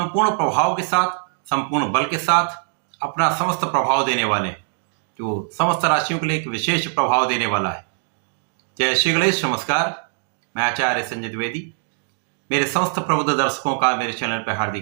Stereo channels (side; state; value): left; silent; 61 dB below the other